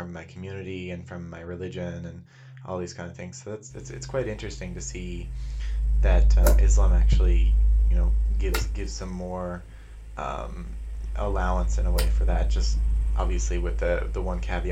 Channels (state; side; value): identical; both; correlation 1.00